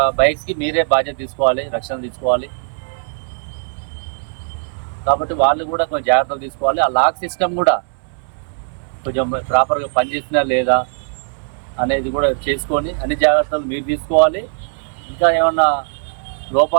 బైక్స్కి మీరే బాధ్యత తీసుకోవాలి, రక్షణ తీసుకోవాలి. కాబట్టి వాళ్ళు కూడా కొంచెం జాగ్రత్తలు తీసుకోవాలి. ఆ లాక్ సిస్టమ్ కూడా కొంచెం ప్రాపర్గా పనిచేసినా లేదా అనేది కూడా చేసుకొని అన్ని జాగ్రత్తలు మీరు తీసుకోవాలి. ఇంకా ఏమన్నా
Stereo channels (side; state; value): left; silent; 65 dB below the other